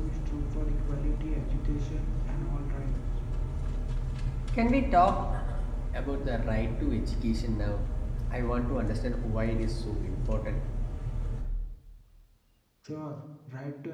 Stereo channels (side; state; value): both; identical; correlation 1.00